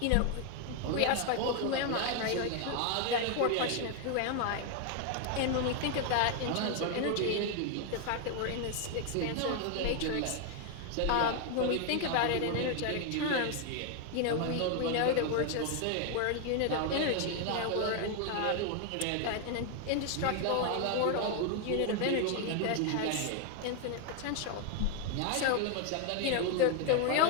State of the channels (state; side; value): different; both; correlation 0.01